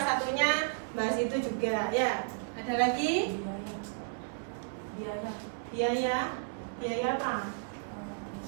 satunya bahas itu juga ya. Ada lagi? Biaya apa?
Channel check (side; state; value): left; silent; 56 dB below the other